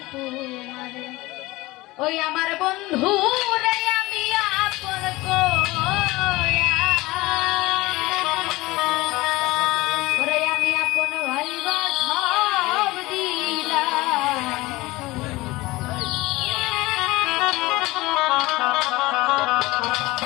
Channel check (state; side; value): quieter; right; 20.1 dB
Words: তোমারে ওই আমার বন্ধু রে আমি আপন কইয়া ওরে আমি আপন ভাইবা সব দিলাম